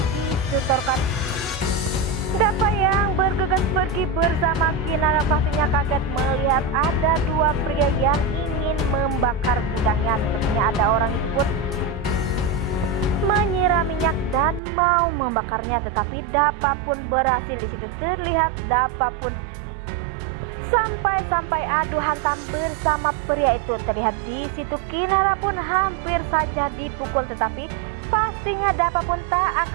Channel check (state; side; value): drops out; left; at 14.6 s